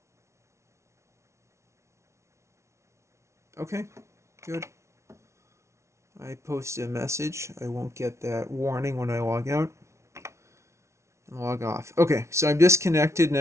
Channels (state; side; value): late; left; 0.13 ms